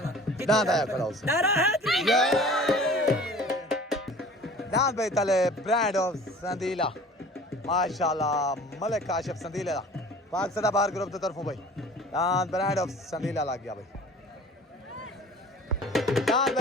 दांत आया खड़ा उसे नारा है दांत भाई तले ब्रांड ऑफ संदीला माशाल्लाह मलिक काशिफ संदीला पाक सदाबहार ग्रुप की तरफों भाई दांत ब्रांड ऑफ संदीला लग गया भाई दांत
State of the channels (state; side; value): normal; both; correlation 0.45